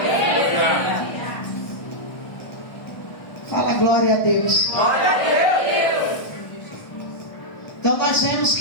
Fala glória a Deus. Glória a Deus. nós vemos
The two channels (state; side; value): late; right; 1.3 ms